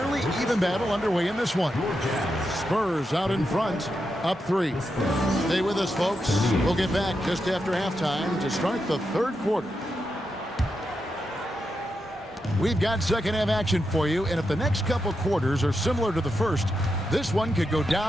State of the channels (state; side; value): normal; both; correlation 0.86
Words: even battle underway in this one. Spurs out in front, up 3. Stay with us, folks. We'll get back just after halftime to start the third quarter. We've got second half action for you, and if the next couple quarters are similar to the first, this one could go